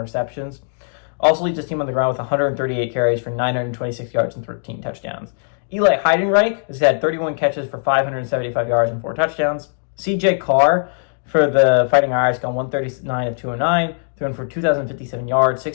Also leads his team on the ground with 138 carries for 926 yards and 13 touchdowns. Eli Heidenreich has had 31 catches for 575 yards and 4 touchdowns. CJ Carr for the Fighting Irish gone 139 of 209, thrown for 2,057 yards,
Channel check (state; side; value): silent; right; digital silence